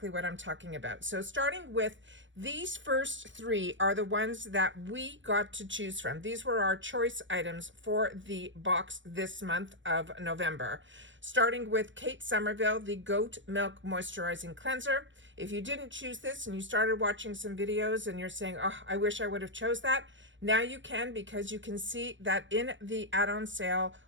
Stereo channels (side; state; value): left; late; 0.55 ms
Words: what I'm talking about. So starting with these first 3 are the ones that we got to choose from. These were our choice items for the box this month of November. Starting with Kate Somerville, the Goat Milk Moisturizing Cleanser. If you didn't choose this and you started watching some videos and you're saying, oh, I wish I would have chose that, now you can, because you can see that in the add-on sale